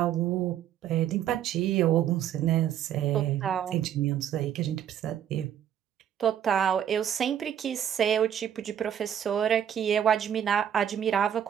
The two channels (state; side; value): quieter; left; 9.8 dB